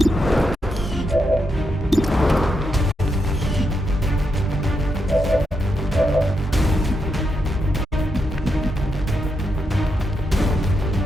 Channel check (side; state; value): both; normal; correlation 0.83